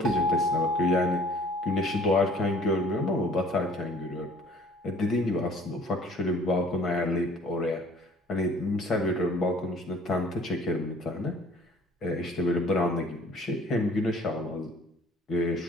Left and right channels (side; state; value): both; normal; correlation 0.54